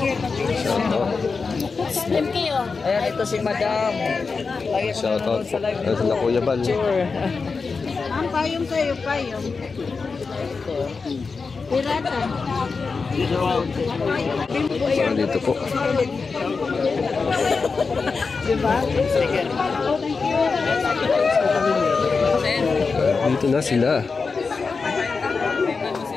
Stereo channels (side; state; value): right; quieter; 4.7 dB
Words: ayan, ito si Madam. shout out po. Ito na Kuya Bal. Ang payong kayo, payong. Pirata. So, dito po. Diba? Dito na sila.